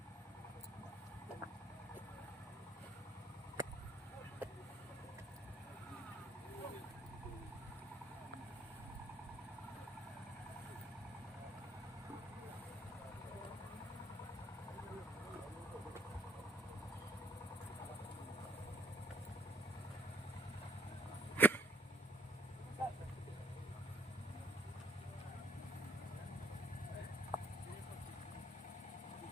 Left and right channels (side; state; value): both; normal; correlation 0.63